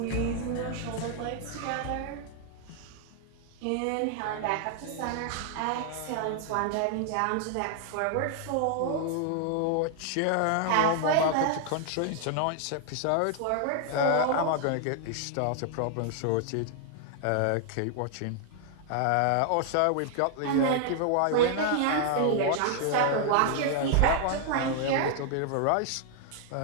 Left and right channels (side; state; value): both; different; correlation 0.00